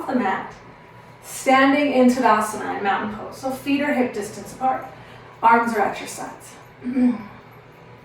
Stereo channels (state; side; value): identical; both; correlation 1.00